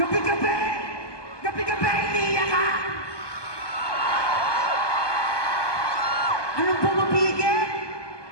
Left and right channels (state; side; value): late; right; 1.2 ms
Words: Gabi-gabi, iniiyak ka! Anong pumapigil?